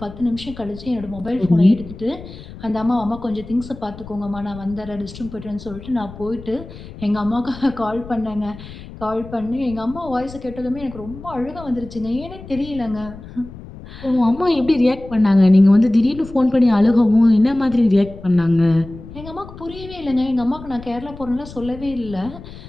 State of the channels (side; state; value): left; noise; rumble, 15 dB below the sound